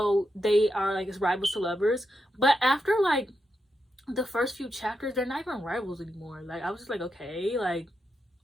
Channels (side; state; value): both; normal; correlation 0.85